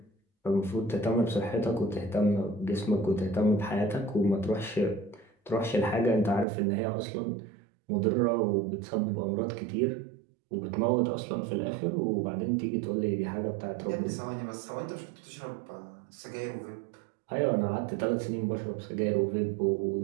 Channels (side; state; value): left; drops out; at 6.5 s